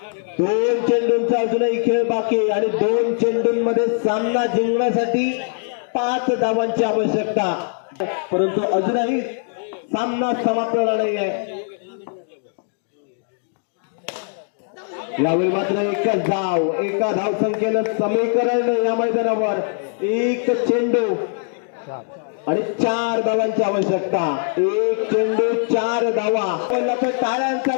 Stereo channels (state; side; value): silent; right; 65 dB below the other